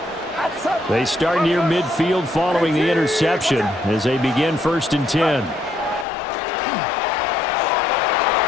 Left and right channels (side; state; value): right; drops out; at 6.1 s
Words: They start near midfield following the interception as they begin 1st and 10.